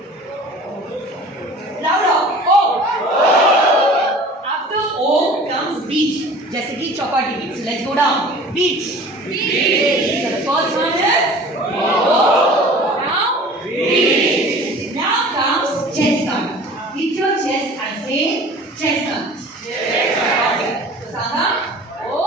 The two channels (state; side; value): normal; both; correlation 0.44